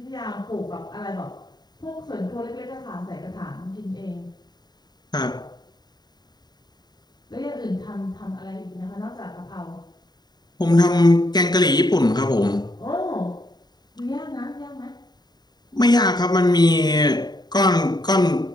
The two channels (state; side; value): late; right; 0.20 ms